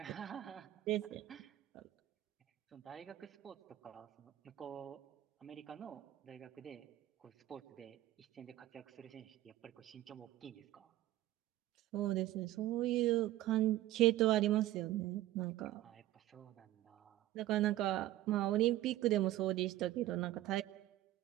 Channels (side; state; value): left; quieter; 15.0 dB